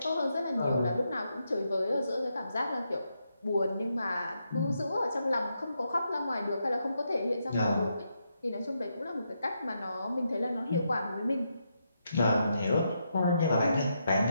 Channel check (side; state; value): both; inverted; correlation -0.82